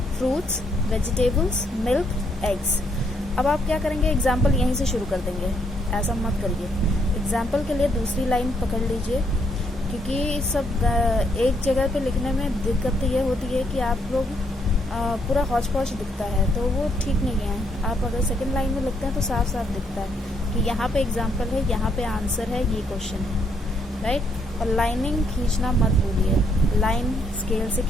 फ्रूट्स, वेजिटेबल्स, मिल्क, एग्स। अब आप क्या करेंगे, एग्जाम्पल यहीं से शुरू कर देंगे, ऐसा मत करिए। एग्जाम्पल के लिए दूसरी लाइन पकड़ लीजिए, क्योंकि सब एक जगह पे लिखने में दिक्कत ये होती है कि आप लोग पूरा हौच पौच दिखता है, तो वो ठीक नहीं है। आप अगर सेकंड लाइन में लिखते हैं तो साफ साफ दिखता है कि यहाँ पे एग्जाम्पल है, यहाँ पे आंसर है, ये क्वेश्चन है, राइट। और लाइनिंग खींचना मत भूलिए, लाइन स्केल से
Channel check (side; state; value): both; normal; correlation 0.72